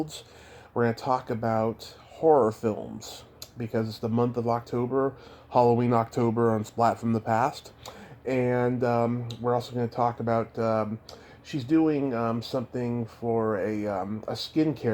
We're going to talk about horror films because it's the month of October, Halloween October on Splat from the Past. And we're also going to talk about she's doing something for a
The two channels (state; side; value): identical; both; correlation 1.00